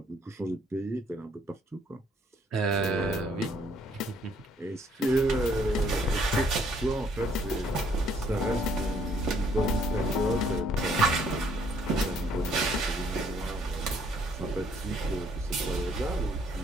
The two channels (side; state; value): both; normal; correlation 0.65